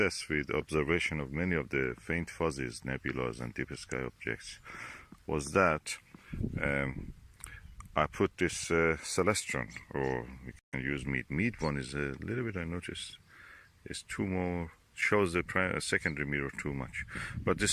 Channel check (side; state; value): both; identical; correlation 1.00